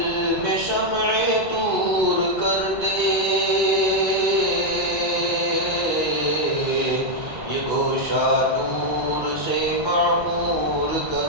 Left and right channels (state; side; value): late; left; 1.2 ms